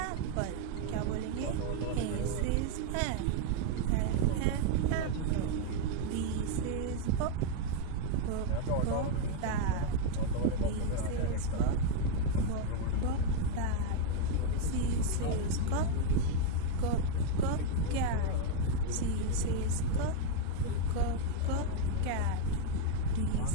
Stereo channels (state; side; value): different; both; correlation 0.01